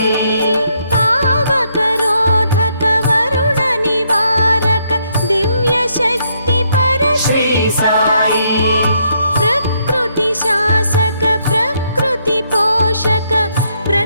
పావకరోధక వరుణ నివారక దివ్య శక్తి పర శ్రీ సాయి ప్రకృతి శాసక ప్రకృతి పోషక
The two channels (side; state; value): both; inverted; correlation -0.74